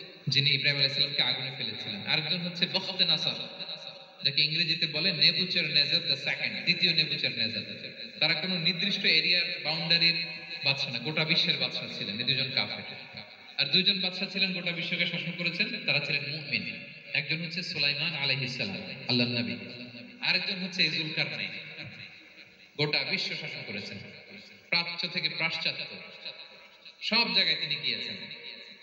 যিনি ইব্রাহিম আলাইহিস সালামকে আগুনে ফেলেছিলেন, আরেকজন হচ্ছে বখতে নাসার, যাকে ইংরেজিতে বলে নেবুচারনেজার দ্য সেকেন্ড, দ্বিতীয় নেবুচারনেজার। তারা কোনো নির্দিষ্ট এরিয়ার বাউন্ডারির বাদশা না, গোটা বিশ্বের বাদশা ছিলেন এই 2 জন কাফির। আর 2 জন বাদশা ছিলেন গোটা বিশ্বকে শাসন করেছেন, তারা ছিলেন মুমিন। একজন হচ্ছে সুলাইমান আলাইহিস সালাম, আল্লাহর নবী, আরেকজন হচ্ছে যুলকারনাইন, গোটা বিশ্ব শাসন করেছেন, প্রাচ্য থেকে পাশ্চাত্য সব জায়গায় তিনি গিয়েছেন,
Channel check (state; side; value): identical; both; correlation 1.00